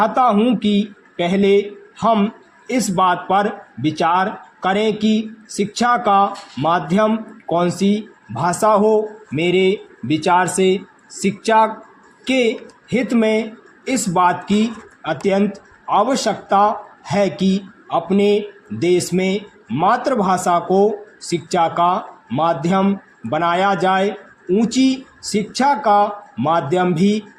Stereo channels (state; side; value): identical; both; correlation 1.00